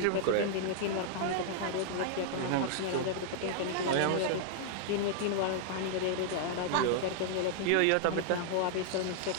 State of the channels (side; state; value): both; different; correlation -0.01